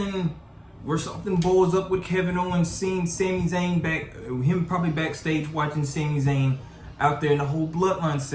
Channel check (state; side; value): identical; both; correlation 1.00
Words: where something blows up with Kevin Owens seeing Sami Zayn him probably backstage watching Sami Zayn out there in the whole Bloodline